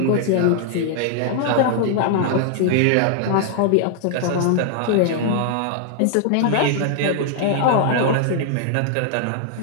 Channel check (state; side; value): different; both; correlation 0.00